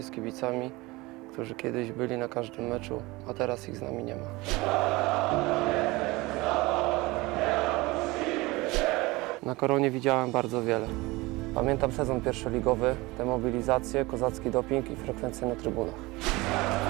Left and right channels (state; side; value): quieter; left; 22.0 dB